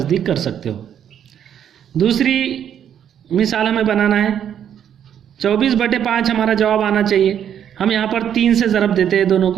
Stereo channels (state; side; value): quieter; left; 9.3 dB